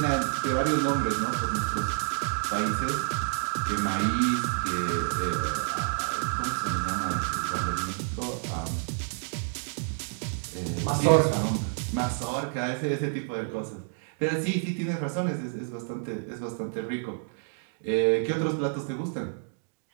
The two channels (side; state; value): left; silent; digital silence